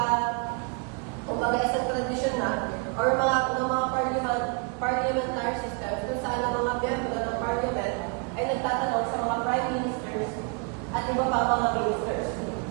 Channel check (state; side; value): quieter; left; 33.9 dB